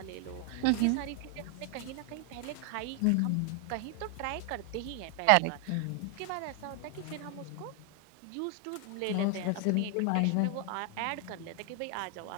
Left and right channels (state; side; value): different; both; correlation 0.00